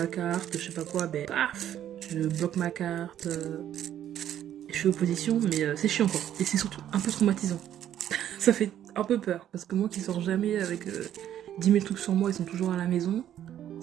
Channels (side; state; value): left; quieter; 11.0 dB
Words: carte, je sais pas quoi, ben, paf, je bloque ma carte, je fais opposition, mais c'est chiant quoi. Et c'est surtout un peu traumatisant. Ça fait un peu peur, parce que moi qui sors jamais avec 10 000 trucs sur moi, ils sont toujours à la maison,